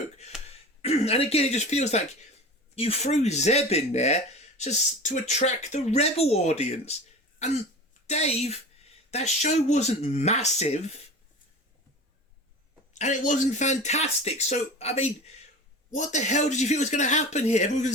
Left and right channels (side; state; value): both; normal; correlation 0.34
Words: And again, it just feels like you threw Zeb in there just to attract the Rebel audience. And Dave, that show wasn't massive. And it wasn't fantastic. So, I mean, what the hell did you think was going to happen here? Everyone going